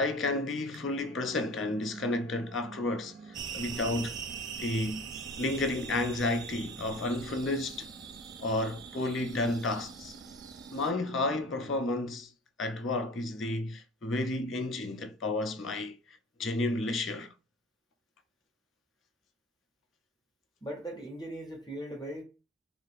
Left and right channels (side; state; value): both; normal; correlation 0.41